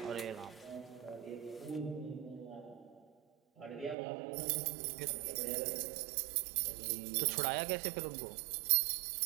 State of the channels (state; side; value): drops out; left; at 4.0 s